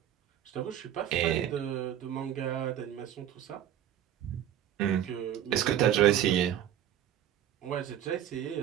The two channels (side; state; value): left; quieter; 11.0 dB